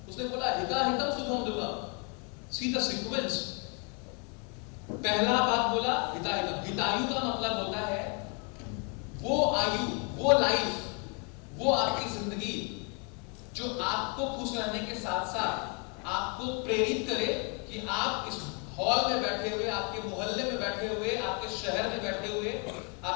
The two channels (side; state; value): right; quieter; 36.2 dB